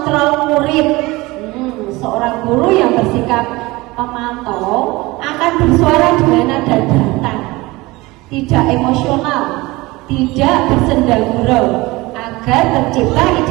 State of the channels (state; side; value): quieter; left; 21.5 dB